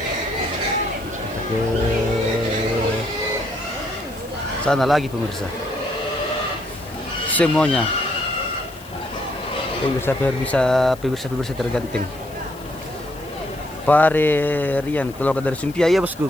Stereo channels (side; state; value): left; noise; hiss, 22 dB below the sound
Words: Ke sana lagi pemirsa. Semuanya pemirsa tergantung. Pare Rian keluar dari Sumpia ya bosku,